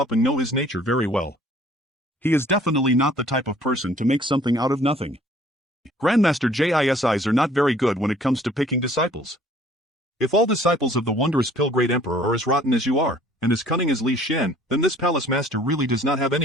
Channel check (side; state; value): both; normal; correlation 0.56